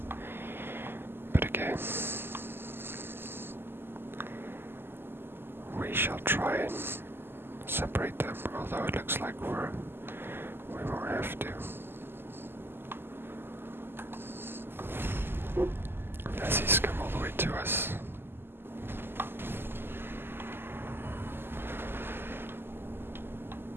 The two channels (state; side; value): late; left; 0.11 ms